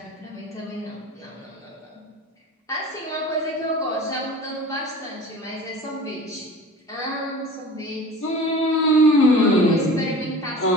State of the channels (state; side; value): normal; both; correlation 0.39